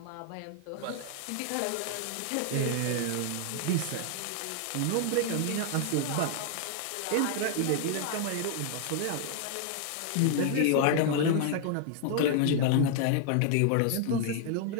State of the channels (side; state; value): both; different; correlation 0.00